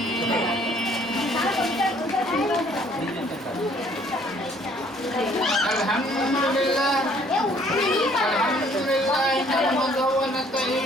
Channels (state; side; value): normal; both; correlation 0.60